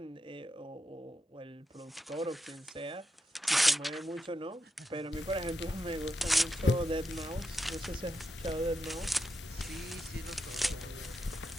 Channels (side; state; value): both; normal; correlation 0.86